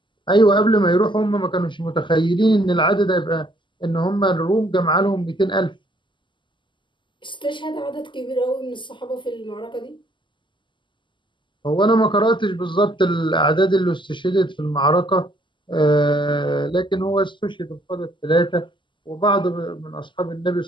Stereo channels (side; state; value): right; late; 0.24 ms